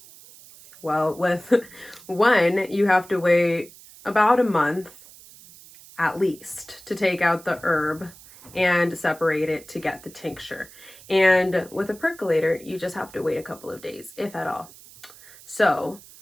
Well, with one, you have to wait about a month at least to take out the herb and separate it to get the tincture. And with a percolator, you just have to wait a couple of days, if at all. So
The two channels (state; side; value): noise; right; hiss, 21 dB below the sound